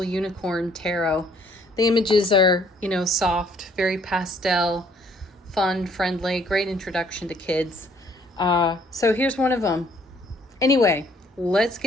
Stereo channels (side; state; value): both; normal; correlation 0.62